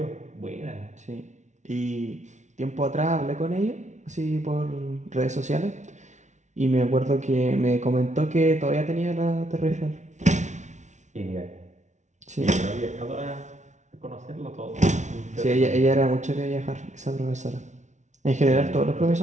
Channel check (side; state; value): left; late; 0.34 ms